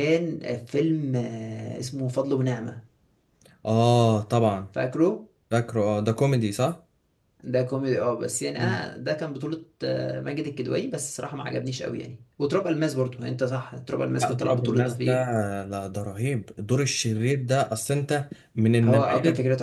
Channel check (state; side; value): identical; both; correlation 1.00